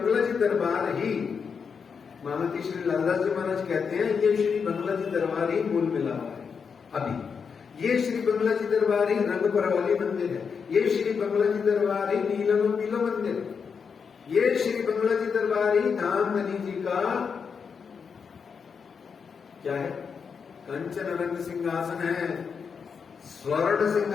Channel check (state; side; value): quieter; right; 6.1 dB